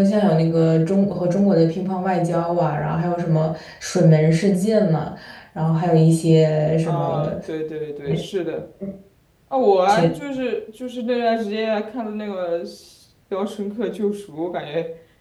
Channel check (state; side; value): identical; both; correlation 1.00